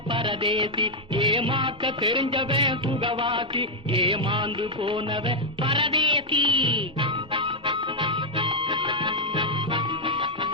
பரதேசி. ஏமாக்க தெரிஞ்சவன் சுகவாசி, ஏமாந்து போனவன் பரதேசி.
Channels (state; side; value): normal; both; correlation -0.02